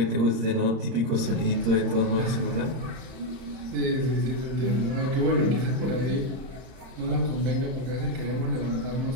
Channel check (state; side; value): late; left; 31 ms